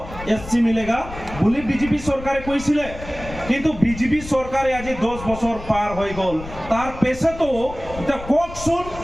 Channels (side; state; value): left; noise; rumble, 13 dB below the sound